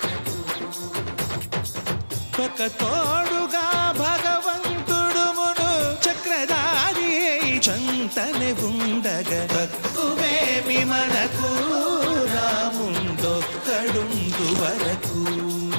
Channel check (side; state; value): both; inverted; correlation -1.00